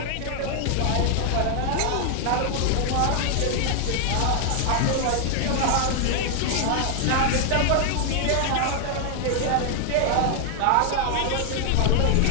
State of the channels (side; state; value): both; different; correlation 0.00